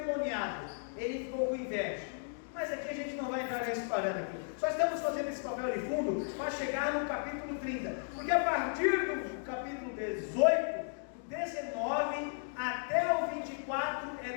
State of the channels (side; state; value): right; silent; digital silence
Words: Ele ficou com inveja. Mas aqui a gente não vai entrar nesse parâmetro. Só estamos fazendo esse papel de fundo para chegar no capítulo 30. Porque a partir do capítulo 18, do 19 até o 24, é